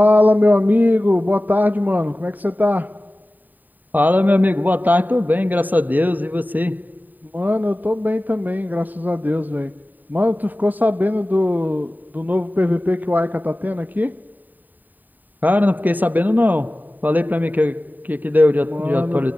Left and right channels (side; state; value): left; late; 0.087 ms